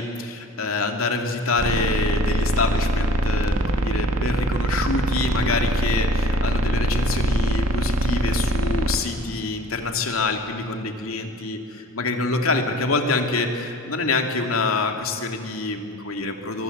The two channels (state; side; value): normal; both; correlation 0.45